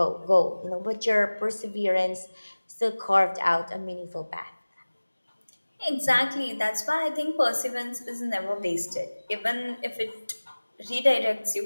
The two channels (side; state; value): both; inverted; correlation -1.00